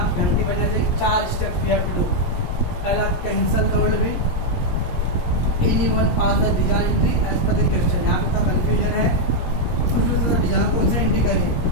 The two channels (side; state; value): right; late; 17 ms